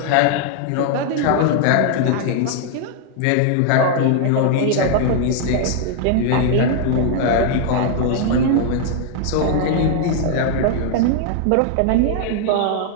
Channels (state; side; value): different; both; correlation 0.00